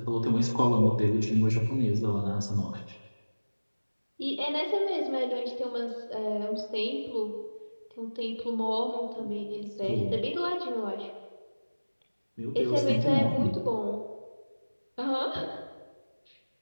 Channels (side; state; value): both; inverted; correlation -1.00